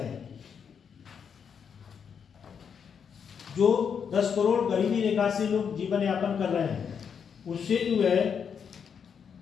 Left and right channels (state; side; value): quieter; right; 7.0 dB